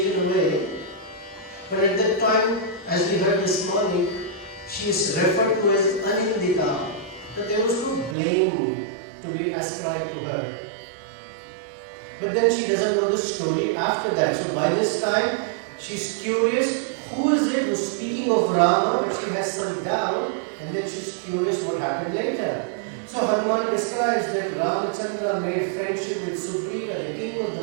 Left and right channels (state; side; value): drops out; left; at 8.2 s